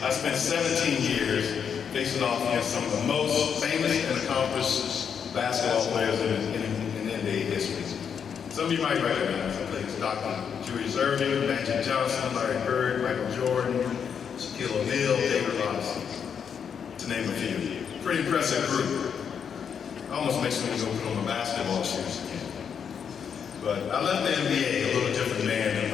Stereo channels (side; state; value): right; quieter; 7.3 dB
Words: I spent 17 years facing off against some of the most famous and accomplished basketball players in NBA history. Some of you might recognize them. Dr. Julius Irving, Magic Johnson, Larry Bird, Michael Jordan, Shaquille O'Neal, David Robinson, to name a few. Pretty impressive group. Almost makes me go put on my basketball shoes again. But I left the NBA a little different man than